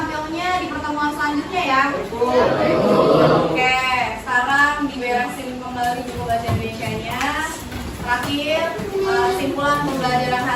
di pertemuan selanjutnya ya. Oke, sekarang diberesin kembali buku bahasa Indonesianya. Terakhir, simpulan pembelajaran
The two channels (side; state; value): both; identical; correlation 1.00